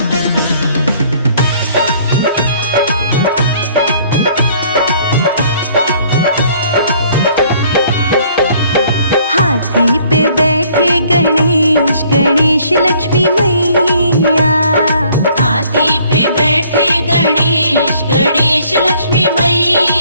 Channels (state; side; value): inverted; both; correlation -0.59